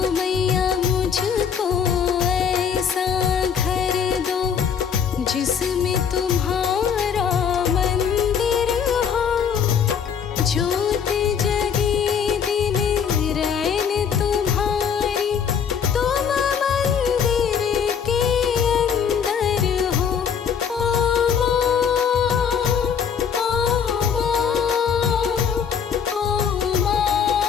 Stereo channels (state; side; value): quieter; right; 7.3 dB